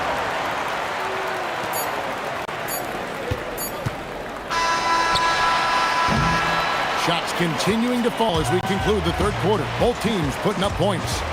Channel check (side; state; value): both; identical; correlation 1.00